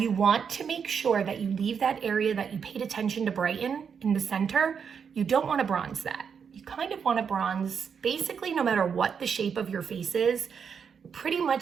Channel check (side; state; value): left; quieter; 6.7 dB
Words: want to make sure that you leave that area that you paid attention to brighten in the center. You don't want to bronze that. You kind of want to bronze basically no matter what the shape of your face is. Pretty